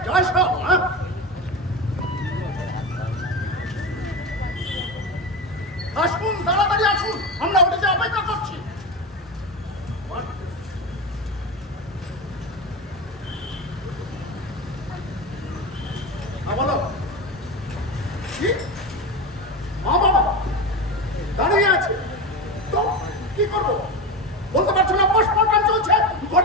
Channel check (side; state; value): both; normal; correlation 0.20